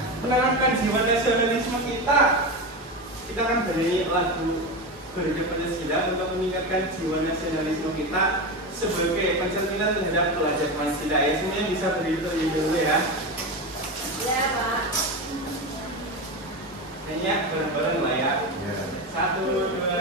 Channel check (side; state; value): both; normal; correlation 0.19